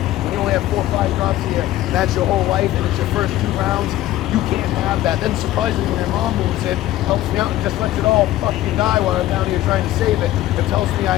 When you only have 4 or 5 drops here, and that's your whole life, and it's your first 2 rounds, you can't have that. Then surprisingly, when your mom moves in, helps me out and just lets it all fucking die while I'm down here trying to save it, and tells me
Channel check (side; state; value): right; quieter; 14.8 dB